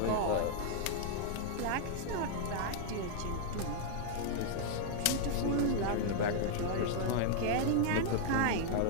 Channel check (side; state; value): both; different; correlation -0.01